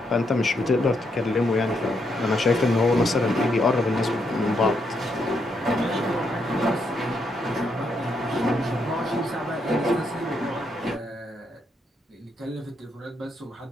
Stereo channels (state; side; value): normal; both; correlation 0.78